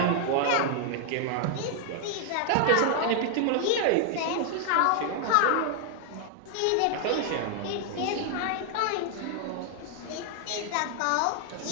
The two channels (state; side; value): different; both; correlation 0.00